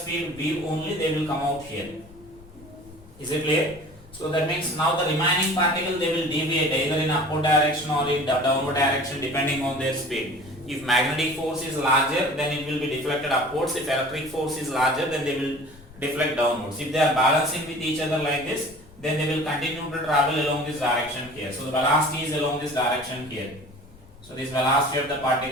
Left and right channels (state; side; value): noise; left; rumble, 22 dB below the sound